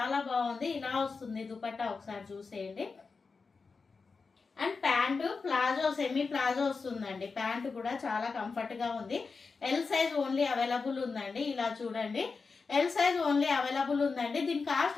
బాగుంది. ఇలా వస్తుంది దుపట్టా, ఒకసారి చూసేయండి. And pant palazzo, semi palazzo వస్తుందండి. ప్యాంటు కూడా చాలా కంఫర్ట్ గా ఉంది. ఎల్ సైజ్ ఓన్లీ అవైలబుల్ ఉందండి. ఇలా చూడండి, ఎల్ సైజ్ ఓన్లీ అవైలబుల్ ఉందండి. దీని కాస్ట్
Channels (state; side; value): quieter; right; 4.6 dB